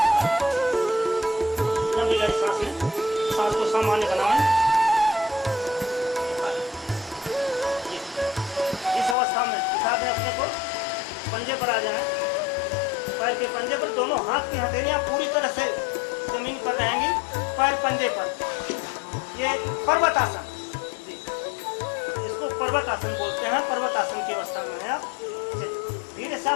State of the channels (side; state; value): right; drops out; at 9.2 s